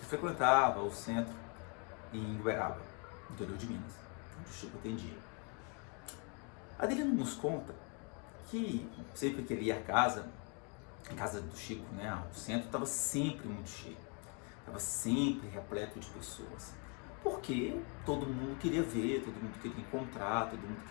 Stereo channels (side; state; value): right; quieter; 36.0 dB